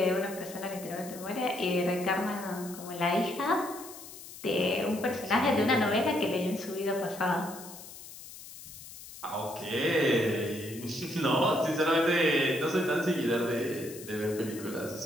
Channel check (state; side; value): noise; left; hiss, 15 dB below the sound